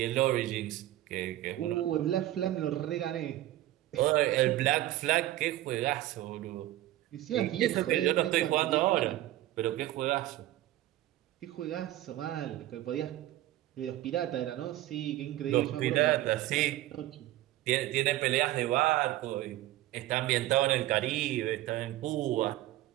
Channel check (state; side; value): quieter; left; 15.0 dB